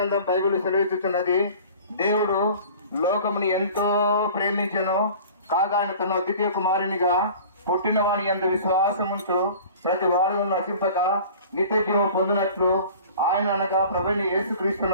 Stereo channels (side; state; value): both; inverted; correlation -0.44